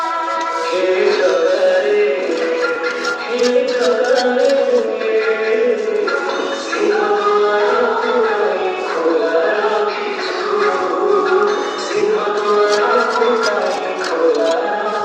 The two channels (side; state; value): both; identical; correlation 1.00